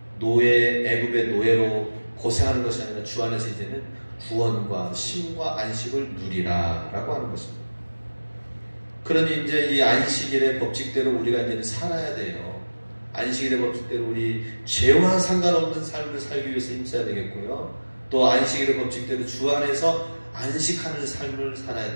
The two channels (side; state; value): both; inverted; correlation -1.00